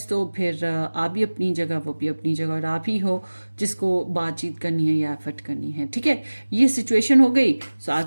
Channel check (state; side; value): inverted; both; correlation -1.00